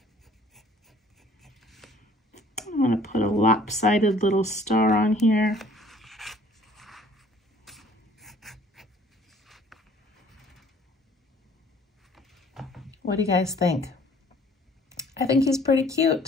I'm going to put a lopsided little star on here. What do you guys think? I think he's pretty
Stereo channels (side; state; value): both; normal; correlation 0.55